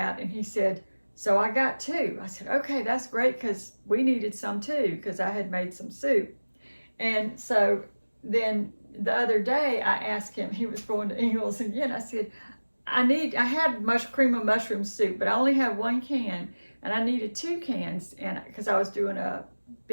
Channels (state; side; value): inverted; both; correlation -1.00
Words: And he said, so I got 2. I said, okay, that's great, because we needed some too, because I had made some soup. And so then the other day I asked him, he was going to Ingles again. I said, I had cream of mushroom soup, but I only have 1 can. and I needed 2 cans, and because I was doing a